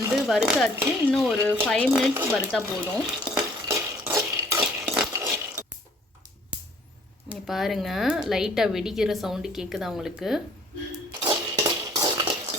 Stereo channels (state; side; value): normal; both; correlation 0.57